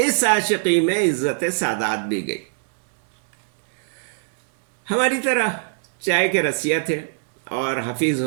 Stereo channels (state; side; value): silent; left; 63 dB below the other